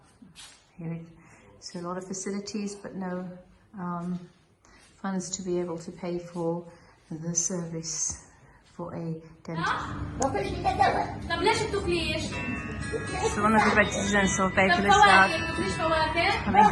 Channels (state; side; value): identical; both; correlation 1.00